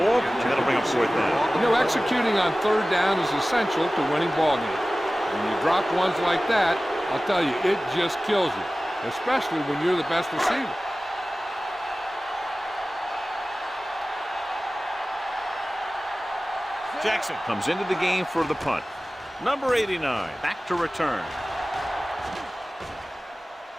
and that'll bring up fourth down. You know, executing on third down is essential to winning ball games. When you drop ones like that, I'll tell you, it just kills you, especially when you're the best receiver. Jackson comes into the game for the punt. Number 89, back to return.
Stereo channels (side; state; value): both; normal; correlation 0.97